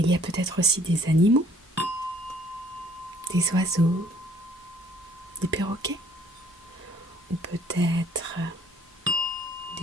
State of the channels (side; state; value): both; normal; correlation 0.59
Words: y a peut-être aussi des animaux, des oiseaux, des perroquets, ou peut-être